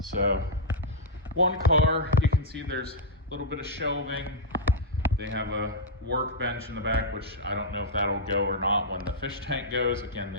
So, one car, you can see there's a little bit of shelving. They have a workbench in the back, which I don't know if that'll go or not when the fish tank goes. Again,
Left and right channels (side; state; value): both; normal; correlation -0.05